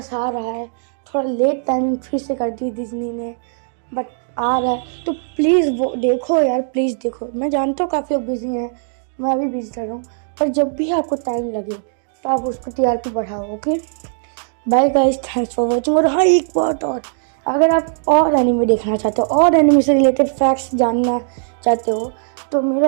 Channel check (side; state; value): left; silent; digital silence